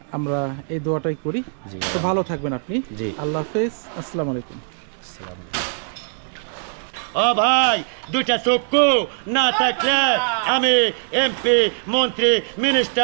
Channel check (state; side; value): silent; left; 61 dB below the other